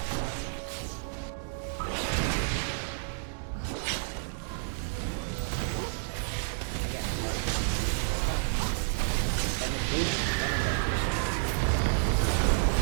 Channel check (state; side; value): silent; left; digital silence